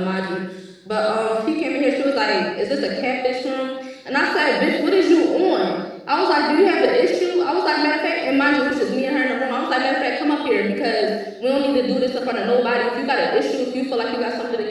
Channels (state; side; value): identical; both; correlation 1.00